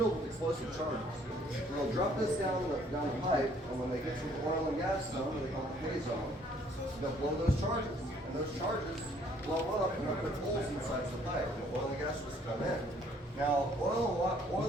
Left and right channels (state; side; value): normal; both; correlation 0.62